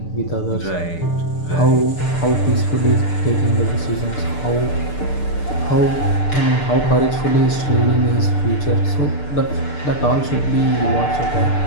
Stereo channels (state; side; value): late; right; 6.7 ms